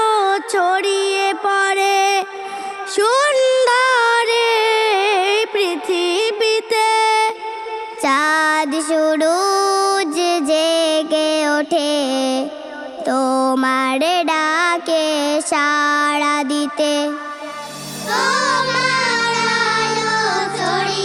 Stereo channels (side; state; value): both; identical; correlation 1.00